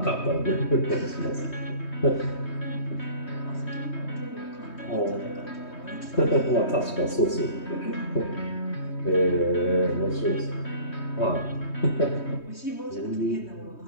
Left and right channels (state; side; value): late; right; 3.2 ms